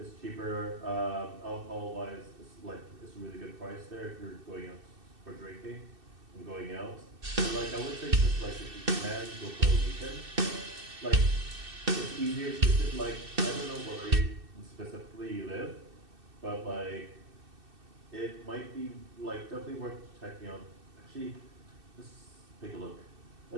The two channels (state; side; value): late; left; 2.6 ms